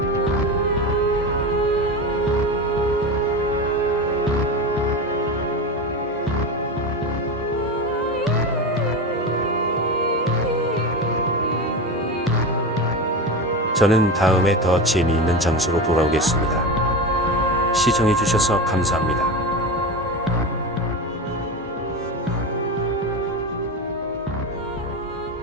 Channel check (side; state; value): both; normal; correlation 0.23